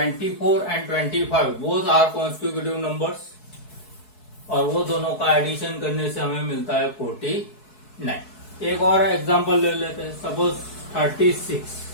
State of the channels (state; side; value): late; right; 4.7 ms